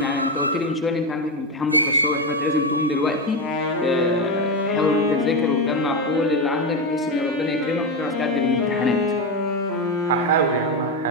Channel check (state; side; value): normal; both; correlation 0.12